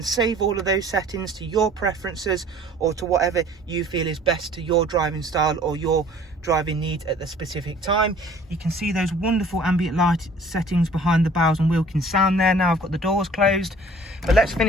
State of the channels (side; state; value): both; normal; correlation 0.52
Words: save all of those settings to your preferences or to whatever you feel is best to your driving style or your driving needs at the specific time. You can see those wonderful ambient light settings behind the Bowers & Wilkins sound there. Now I've got the doors closed, but let's